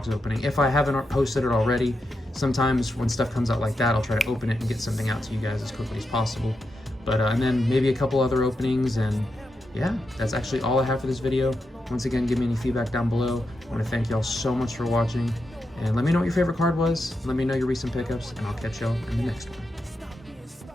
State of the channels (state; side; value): normal; both; correlation 0.86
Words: opening, if I haven't posted it already. Sometimes when stuff comes out like that, I'll try to open it and get something out to you guys as quickly as possible. But and then maybe a couple other openings, and yeah, that's actually all I have for this video. Once again, give me any feedback down below. I want to thank y'all so much for watching, and let me know what your favorite card was. Let me know your recent pickups, and I'll catch y'all in the next one.